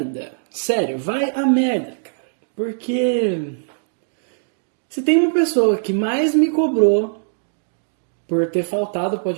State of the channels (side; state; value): left; silent; digital silence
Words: Sério, vai a merda, cara. Porque se tem uma pessoa que mais me cobrou por ter faltado o